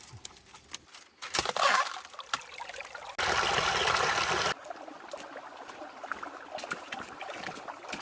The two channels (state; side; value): identical; both; correlation 1.00